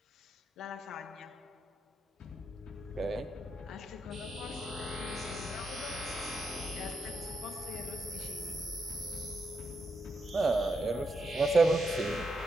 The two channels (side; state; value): both; normal; correlation 0.82